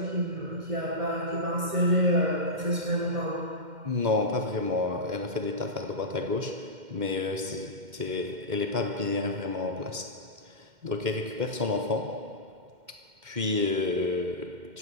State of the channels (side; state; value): left; late; 2.1 ms